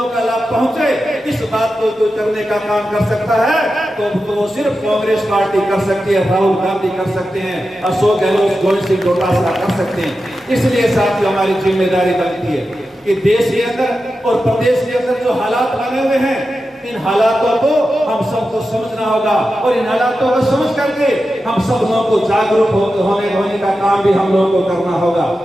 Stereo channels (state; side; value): normal; both; correlation 0.91